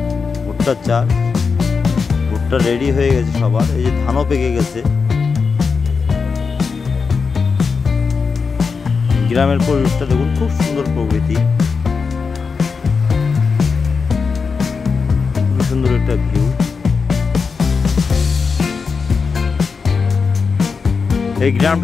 চাষ, ভুট্টা রেডি হয়ে গেছে সবার। এই যে ধানও পেকে গেছে। গ্রামের পরিবেশটা দেখুন, খুব সুন্দর প্রকৃতি, খুব সুন্দর একটা ভিউ। এই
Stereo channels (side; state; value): right; quieter; 5.2 dB